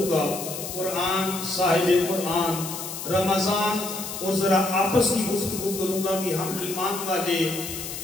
گا۔ قرآن، صاحب قرآن، رمضان، اور ذرا آپس کی گفتگو کروں گا کہ ہم ایمان والے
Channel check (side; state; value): left; noise; hiss, 8 dB below the sound